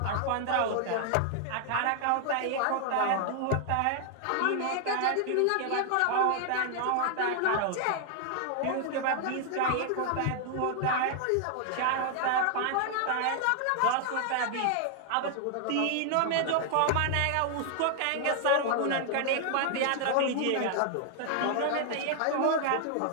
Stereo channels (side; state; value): both; different; correlation 0.00